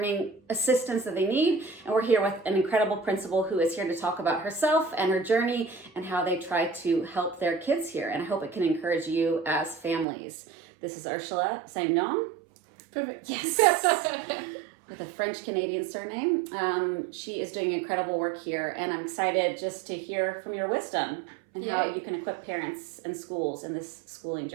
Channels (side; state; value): left; drops out; at 10.1 s